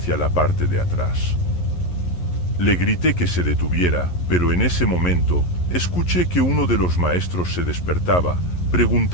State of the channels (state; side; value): late; right; 11 ms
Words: la parte de atrás. Le grité que se detuviera, pero en ese momento, escuché que uno de los maestros se despertaba,